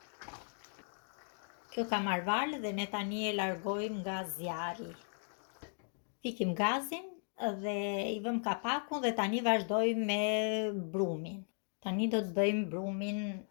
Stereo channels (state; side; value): silent; right; 53 dB below the other